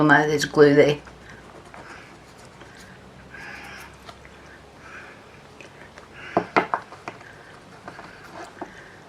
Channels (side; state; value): both; identical; correlation 1.00